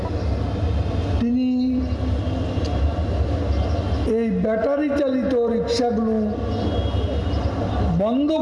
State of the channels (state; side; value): identical; both; correlation 1.00